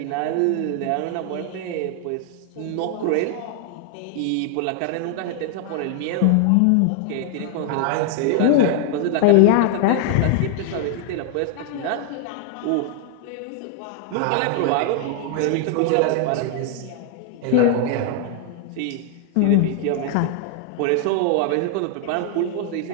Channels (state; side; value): different; both; correlation 0.00